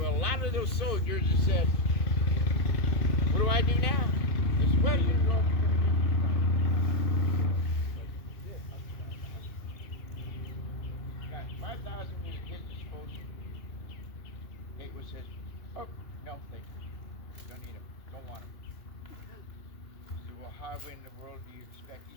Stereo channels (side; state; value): right; late; 2.5 ms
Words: a lot of those soldiers that said, what do I do now? They said, well, you go. Got 5,000 at his disposal. Gatewood says, oh, no, thank you. Don't need them. Don't want them. He said, well, how in the world do you expect?